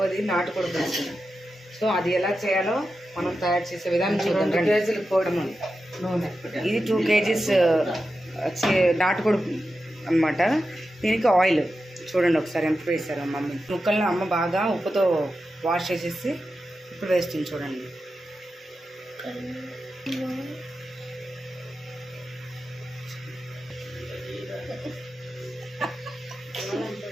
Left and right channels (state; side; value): normal; both; correlation 0.91